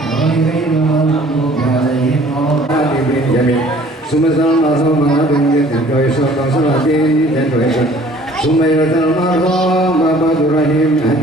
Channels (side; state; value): both; normal; correlation 0.53